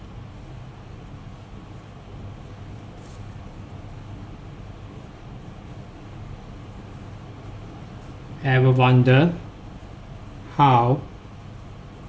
Ever wonder how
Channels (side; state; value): both; identical; correlation 1.00